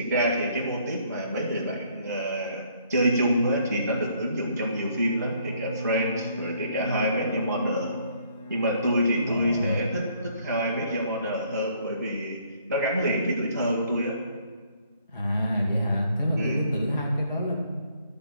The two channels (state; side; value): inverted; both; correlation -0.65